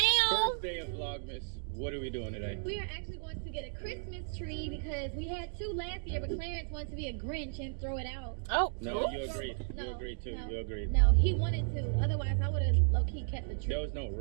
First day of Vlogmas. What are we doing today? We are actually going to get a Christmas tree because we had two last year, but Clarence wanted to be a Grinch and throw it out. Oh. No, you agreed. No, You agreed too. no. You agreed. No, he wanted to. Otherwise, I would have low-key kept the tree. There was no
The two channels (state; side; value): silent; left; digital silence